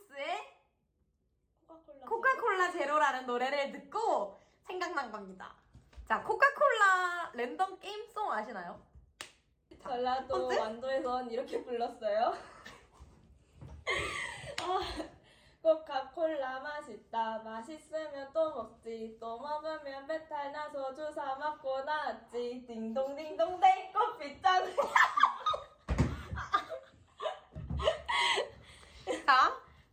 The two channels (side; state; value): both; identical; correlation 1.00